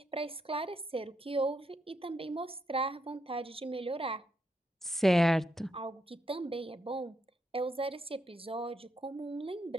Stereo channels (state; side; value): normal; both; correlation 0.80